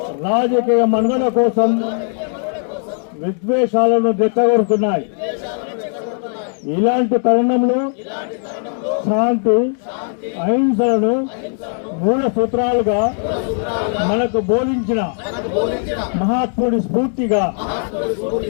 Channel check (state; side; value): silent; right; 58 dB below the other